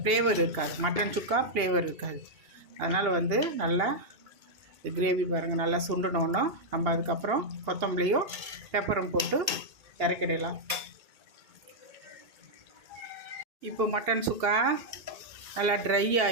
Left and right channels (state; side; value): late; left; 2.8 ms